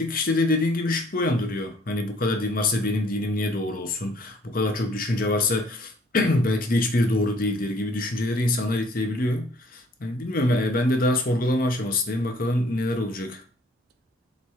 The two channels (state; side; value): normal; both; correlation 0.60